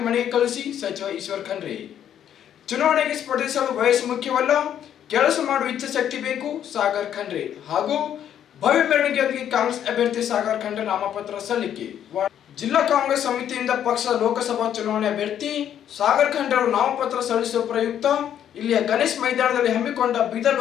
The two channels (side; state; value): right; quieter; 9.9 dB